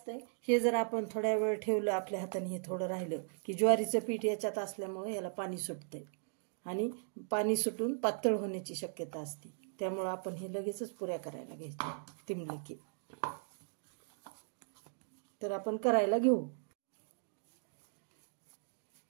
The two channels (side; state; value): left; silent; digital silence